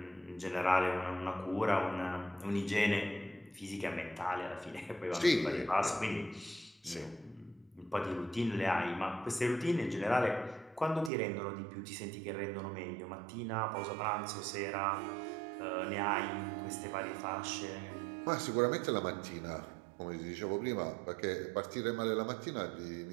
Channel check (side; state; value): left; drops out; at 11.1 s